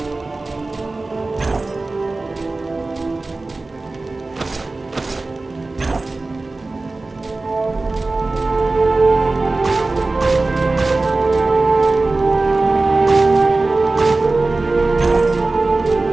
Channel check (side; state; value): left; quieter; 3.3 dB